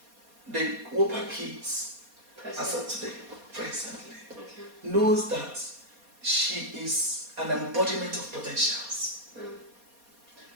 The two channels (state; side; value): late; left; 4.2 ms